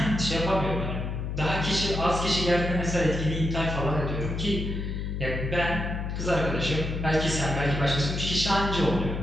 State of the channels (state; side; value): noise; left; hum, 3 dB below the sound